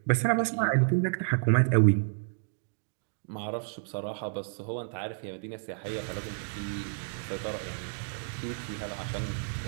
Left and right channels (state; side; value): silent; left; digital silence